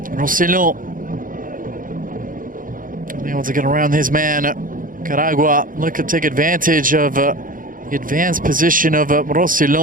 Rossellon able to get around his man. Nicaragua looking to take advantage of the advanced position of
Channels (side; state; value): left; late; 0.40 ms